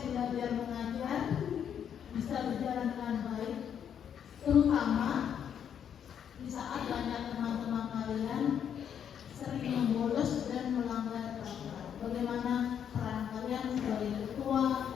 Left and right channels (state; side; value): quieter; right; 8.6 dB